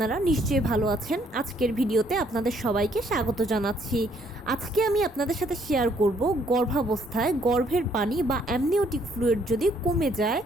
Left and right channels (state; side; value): normal; both; correlation 0.67